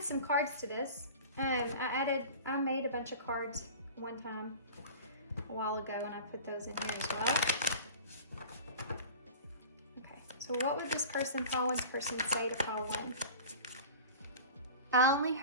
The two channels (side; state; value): both; inverted; correlation -0.38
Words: some cards to this. I made a bunch of cards one time a while ago, and I put those in here as well. Okay, so what would this pile one's person say to pile one? I only